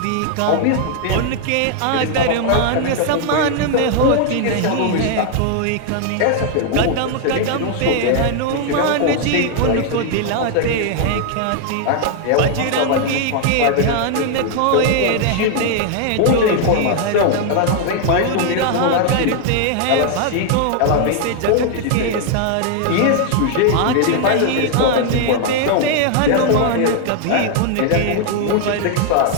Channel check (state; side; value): different; both; correlation 0.00